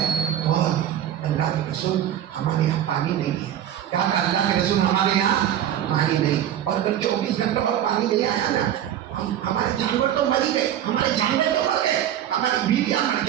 اور اللہ کے رسول ہمارے یہاں پانی نہیں ہے۔ کیا کہا اللہ کے رسول؟ ہمارے یہاں پانی نہیں، اور اگر 24 گھنٹہ اور پانی نہیں آیا نا، ہمارے جانور تو مر ہی گئے، ہماری بیویاں مر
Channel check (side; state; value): left; quieter; 10.9 dB